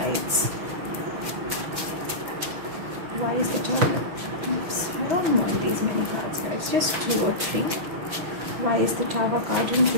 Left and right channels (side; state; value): left; late; 5.9 ms